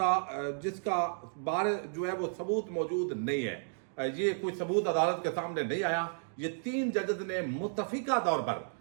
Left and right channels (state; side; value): silent; left; digital silence